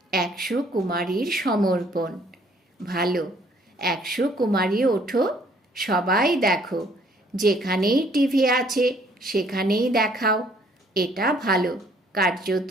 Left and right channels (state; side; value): normal; both; correlation 0.61